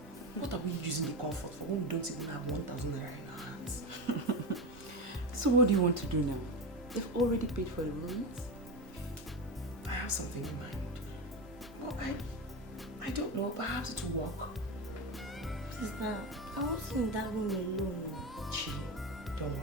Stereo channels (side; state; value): both; normal; correlation 0.19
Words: What are we using the comfort for when we don't even have 1,000 naira in our hands? So what do you want to do now? They've already paid for the rooms. I have something in mind. But I don't know, perhaps it will work. Sister, I wasn't in that room alone. Chill, don't